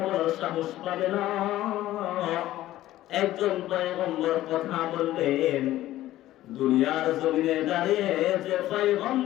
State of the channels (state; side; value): quieter; right; 14.7 dB